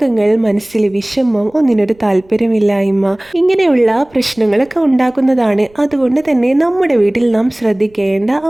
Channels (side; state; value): right; noise; rumble, 30 dB below the sound